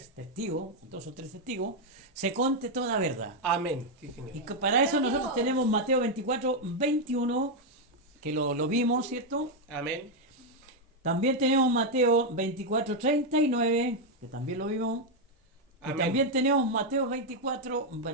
testigos, 2 o 3 testigos, se conte toda verdad. Amén. Sí, Señor. Y que para eso nosotros tenemos Mateo 24, 21, que lo vimos, ¿cierto? Amén. También tenemos Mateo 24, 39, que también lo vimos. Y Amén. también tenemos Mateo 24,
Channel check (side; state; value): both; normal; correlation 0.01